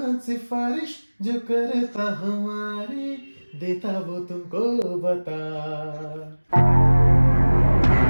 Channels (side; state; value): both; inverted; correlation -1.00